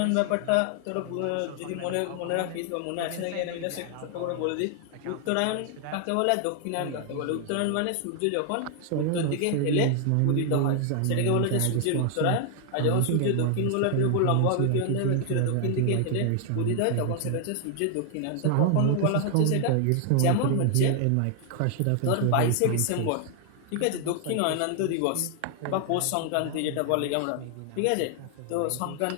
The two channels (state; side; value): different; both; correlation 0.00